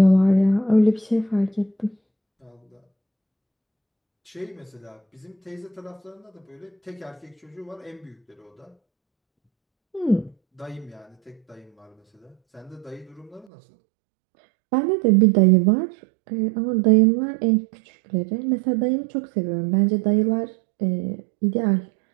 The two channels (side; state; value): left; drops out; at 13.5 s